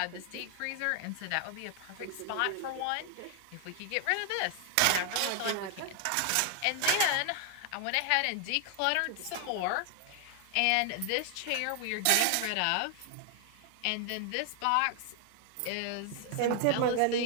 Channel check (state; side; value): different; both; correlation 0.00